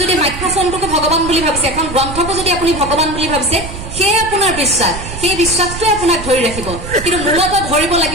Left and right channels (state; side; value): noise; right; rumble, 10 dB below the sound